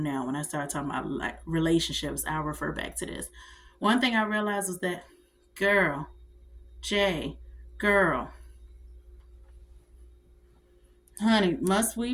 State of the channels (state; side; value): identical; both; correlation 1.00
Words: now. When I start talking about like relationships, I'll refer back to this. One thing I realized was that, girl, Jay, girl, honey, must we